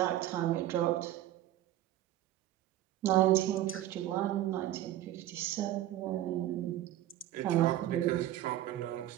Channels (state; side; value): quieter; left; 13.7 dB